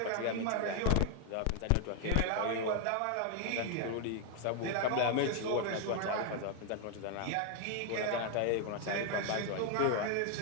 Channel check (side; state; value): both; different; correlation 0.00